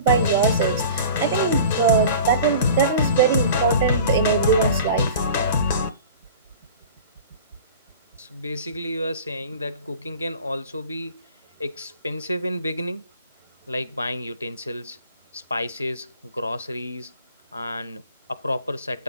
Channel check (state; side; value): inverted; both; correlation -0.40